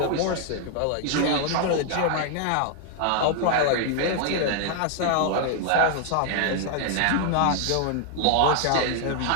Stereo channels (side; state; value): both; different; correlation 0.00